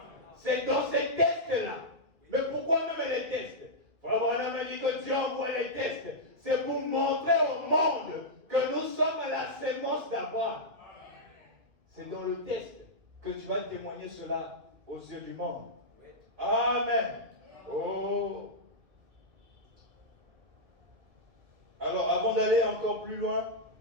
C'est dans ces tests-là. Mais pourquoi même les tests? Frère Branham a dit que Dieu envoie les tests. C'est pour montrer au monde que nous sommes la sémence d'Abraham. C'est dans le test que tu vas témoigner cela aux yeux du monde. Amen. Oh. Alors, avant d'aller encore plus loin,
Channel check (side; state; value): left; late; 2.2 ms